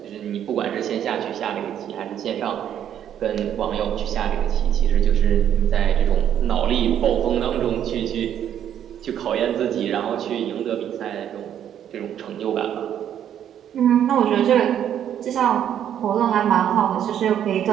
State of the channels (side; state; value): left; quieter; 9.9 dB